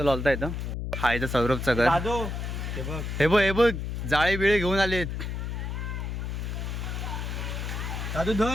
लॉलता येतं. हा इथं सौरभचं घर. दादू हे बघ, हे बघ जाळे बिळे घेऊन आलेत. दादू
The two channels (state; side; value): noise; left; hum, 4 dB below the sound